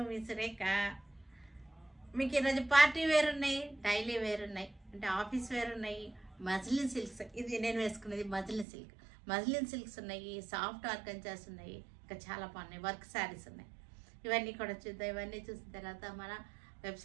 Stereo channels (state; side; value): drops out; left; at 8.7 s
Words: మీ సురేఖ. మీకు ఈరోజు పార్టీ వేర్ ఉన్నాయి, డైలీ వేర్ ఉన్నాయి, అంటే ఆఫీస్ వేర్ ఉన్నాయి. మజ్లిన్ సిల్క్స్, ఇది నేను వేసుకునేది మజ్లిన్ సిల్క్స్ ఉన్నాయి, సాఫ్ట్ ఆర్గంజాస్ ఉన్నాయి, ఇంకా చాలా బాగున్నాయి. వర్క్ శారీస్ ఉన్నాయి. ఇవన్నీ కూడా చూద్దాం. ఇవన్నీ చూసిన తర్వాత మన